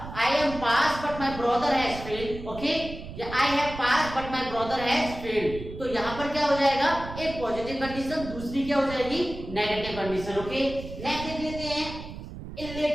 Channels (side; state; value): right; noise; rumble, 11 dB below the sound